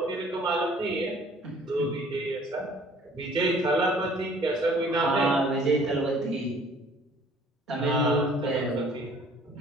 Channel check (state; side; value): normal; both; correlation 0.55